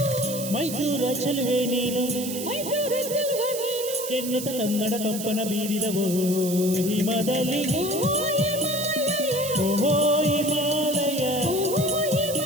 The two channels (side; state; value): right; noise; hiss, 7 dB below the sound